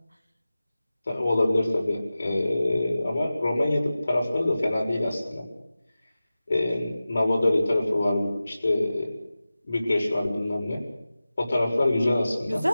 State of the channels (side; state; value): both; inverted; correlation -0.95